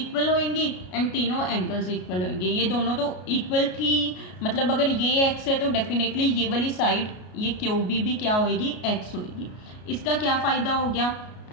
होंगी एंड तीनों एंगल्स इक्वल होंगे। ये दोनों तो इक्वल थी, मतलब अगर ये x है तो डेफिनेटली ये वाली साइड ये QB भी क्या होगी, x होगी। इसका क्या फ़ायदा हो गया,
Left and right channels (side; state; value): right; late; 33 ms